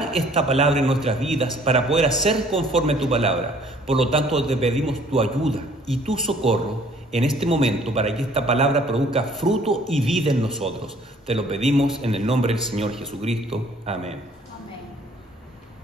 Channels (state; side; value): normal; both; correlation 0.57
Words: esta palabra en nuestras vidas, para poder hacer conforme a tu palabra. Por lo tanto, te pedimos tu ayuda y tu socorro en este momento para que esta palabra produzca fruto y vida en nosotros. Te lo pedimos en el nombre del Señor Jesucristo. Amén.